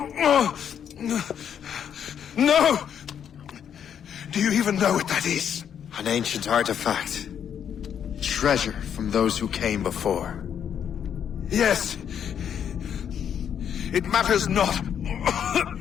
No! Do you even know what that is? An ancient artifact. Treasure from those who came before. Yes. It matters not.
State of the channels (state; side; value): quieter; right; 8.6 dB